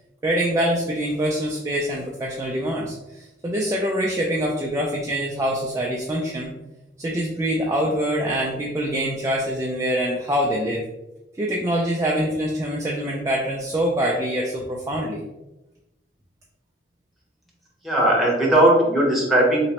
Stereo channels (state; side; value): normal; both; correlation 0.45